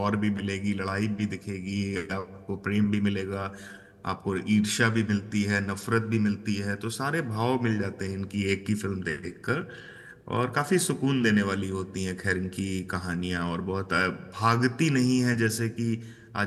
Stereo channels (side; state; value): both; identical; correlation 1.00